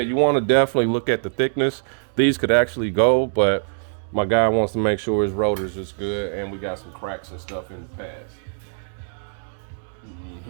you want to definitely look at the thickness. These could actually go, but my guy wants to make sure his rotors is good, and we got some cracks and stuff in the pads.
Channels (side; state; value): left; silent; digital silence